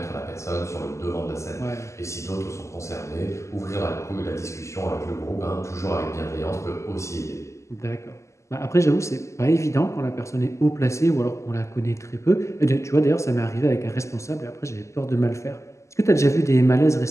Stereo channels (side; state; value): right; late; 0.14 ms